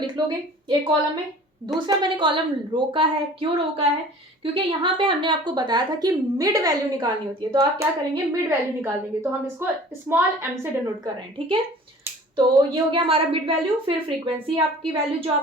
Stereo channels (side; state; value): both; normal; correlation 0.45